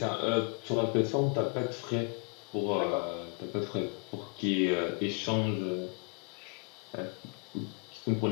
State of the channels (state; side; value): quieter; right; 35.9 dB